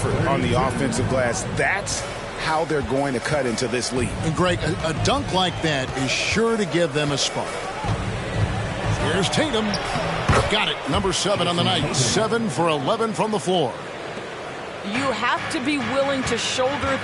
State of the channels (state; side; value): identical; both; correlation 1.00